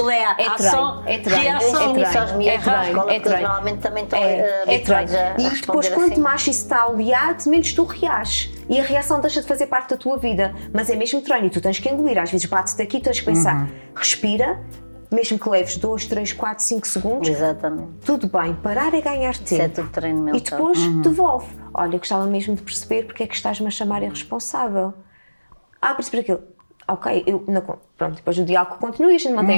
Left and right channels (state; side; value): inverted; both; correlation -1.00